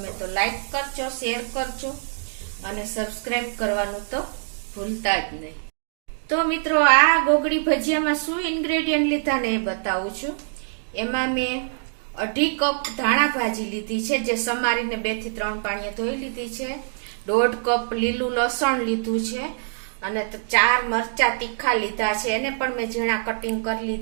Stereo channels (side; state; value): left; silent; digital silence